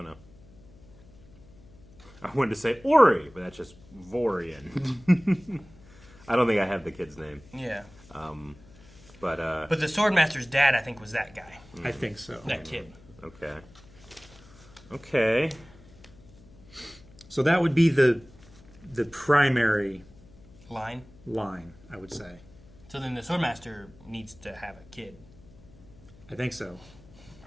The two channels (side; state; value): left; noise; hum, 23 dB below the sound